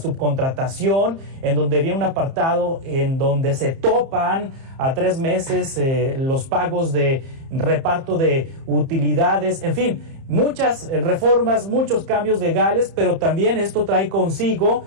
en donde viene un apartado en donde se topan a 3 meses los pagos de reparto de utilidades, en fin, muchas reformas, muchos cambios legales, pero también esto trae consigo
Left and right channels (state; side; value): late; left; 30 ms